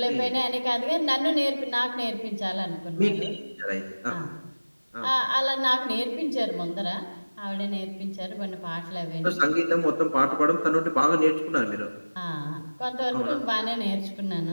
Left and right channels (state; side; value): inverted; both; correlation -1.00